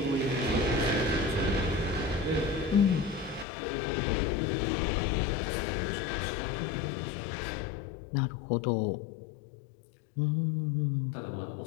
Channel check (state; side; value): drops out; right; at 3.5 s